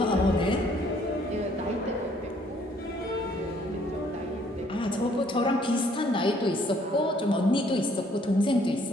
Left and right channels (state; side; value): normal; both; correlation 0.63